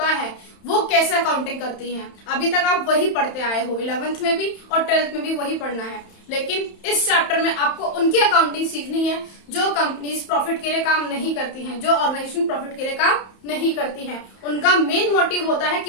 है वो कैसे अकाउंटिंग करती हैं। अभी तक आप वही पढ़ते आए हो, 11th में भी और 12th में भी वही पढ़ना है। लेकिन इस चैप्टर में आपको उनकी अकाउंटिंग सीखनी है जो कंपनीज प्रॉफिट के लिए काम नहीं करती हैं, जो ऑर्गेनाइजेशन प्रॉफिट के लिए काम नहीं करती हैं। उनका मेन मोटिव होता है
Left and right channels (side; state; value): right; late; 31 ms